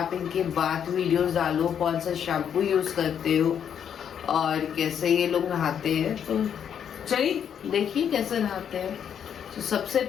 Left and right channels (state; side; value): quieter; right; 8.5 dB